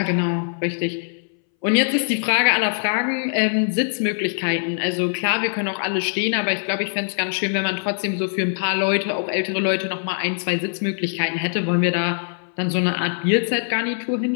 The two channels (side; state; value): right; silent; 62 dB below the other